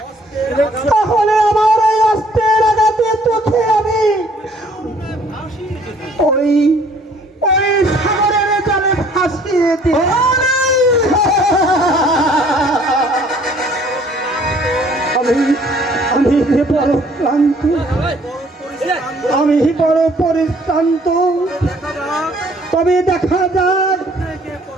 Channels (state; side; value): normal; both; correlation 0.58